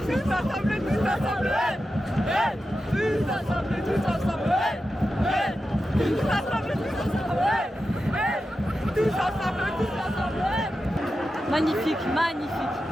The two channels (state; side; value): normal; both; correlation 0.91